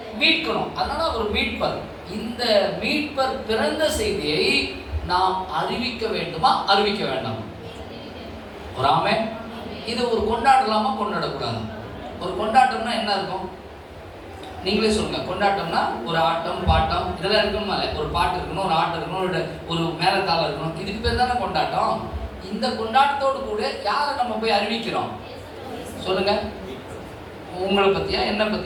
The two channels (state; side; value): identical; both; correlation 1.00